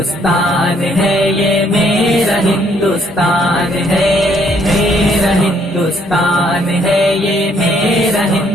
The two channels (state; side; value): normal; both; correlation 0.67